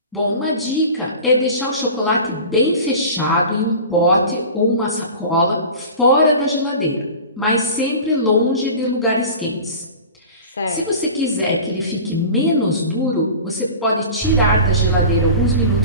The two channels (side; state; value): both; inverted; correlation -0.37